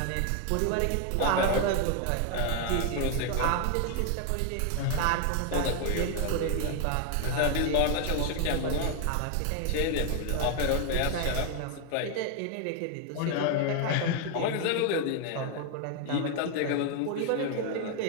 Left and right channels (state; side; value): different; both; correlation 0.00